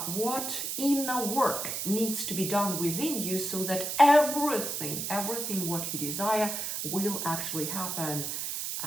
what inner work needs to be done within you so that everything what you desire will actually happen,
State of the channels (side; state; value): right; noise; hiss, 3 dB below the sound